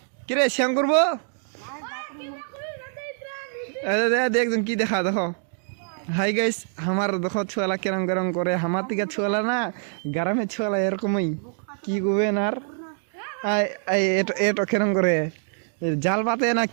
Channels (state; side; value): silent; left; 56 dB below the other